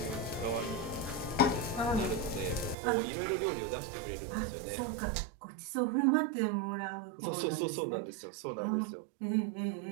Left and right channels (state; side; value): drops out; left; at 2.8 s